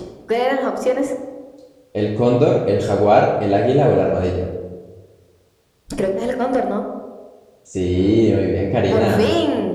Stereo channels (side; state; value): both; identical; correlation 1.00